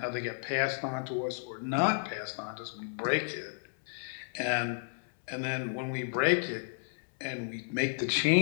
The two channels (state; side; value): silent; right; 56 dB below the other